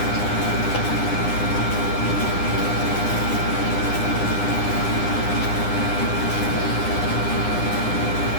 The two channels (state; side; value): late; right; 9.9 ms